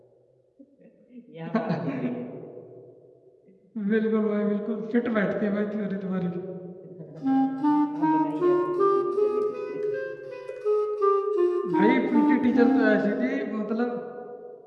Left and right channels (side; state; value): both; identical; correlation 1.00